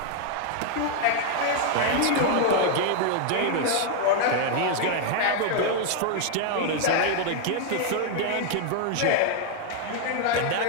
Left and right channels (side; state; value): both; different; correlation 0.00